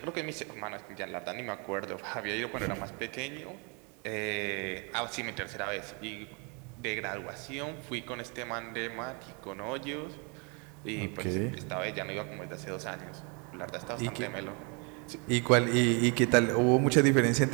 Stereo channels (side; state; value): left; quieter; 33.5 dB